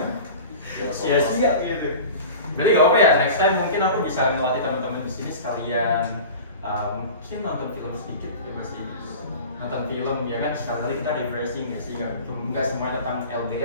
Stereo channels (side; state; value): both; inverted; correlation -0.36